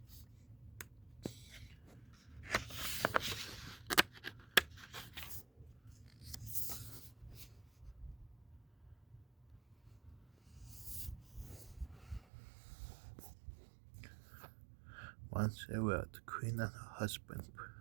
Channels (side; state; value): left; drops out; at 12.2 s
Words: Once aware, the Queen and her husband,